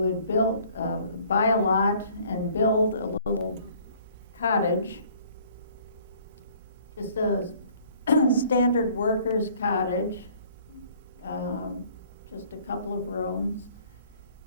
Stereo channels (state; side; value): inverted; both; correlation -0.56